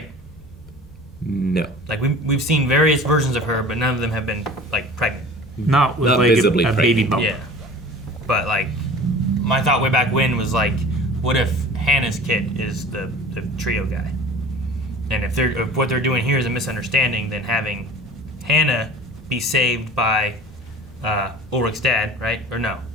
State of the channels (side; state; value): both; normal; correlation 0.41